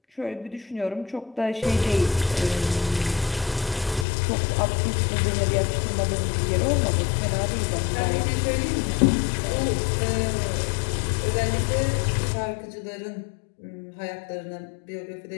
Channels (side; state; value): right; drops out; at 4.0 s